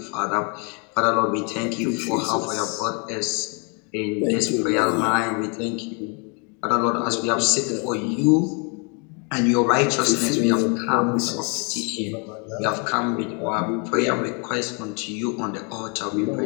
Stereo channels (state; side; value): quieter; right; 35.1 dB